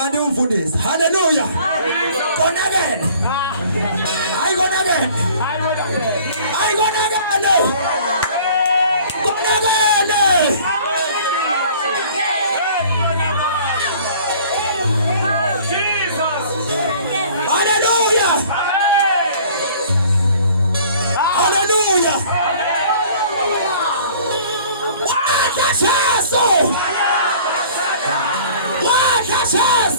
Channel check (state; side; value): inverted; both; correlation -0.51